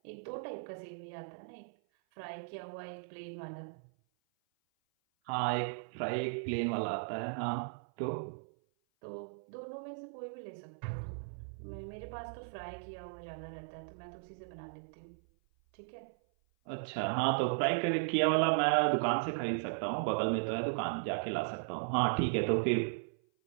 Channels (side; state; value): left; silent; 54 dB below the other